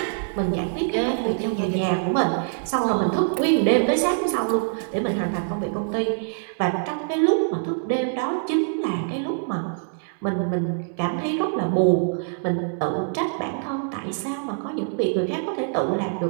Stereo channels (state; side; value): silent; left; digital silence